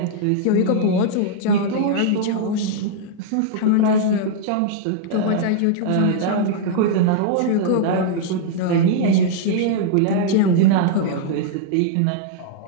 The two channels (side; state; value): both; different; correlation -0.01